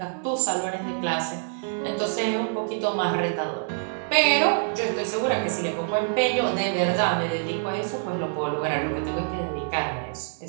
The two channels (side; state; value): left; silent; 61 dB below the other